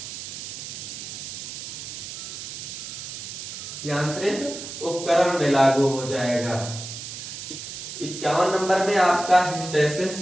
यांत्रिक उपकरण में लागू हो जाएगा। 51 नंबर में आपका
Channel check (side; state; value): right; noise; hiss, 8 dB below the sound